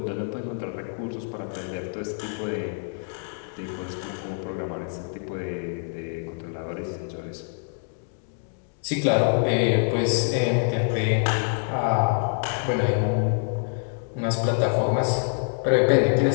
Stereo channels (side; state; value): right; silent; 61 dB below the other